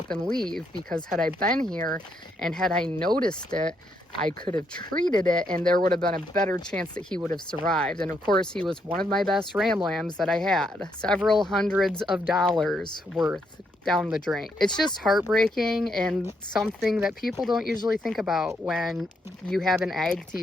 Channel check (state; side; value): normal; both; correlation 0.76